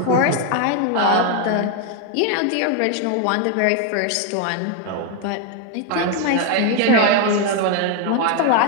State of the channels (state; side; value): different; both; correlation 0.01